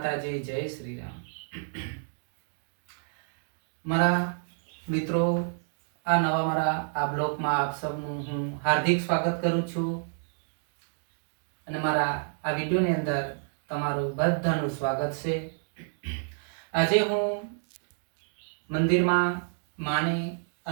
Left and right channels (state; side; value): silent; left; digital silence